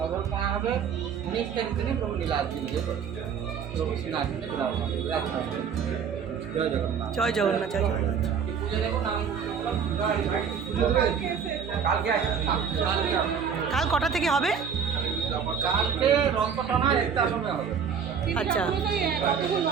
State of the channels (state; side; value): quieter; left; 6.9 dB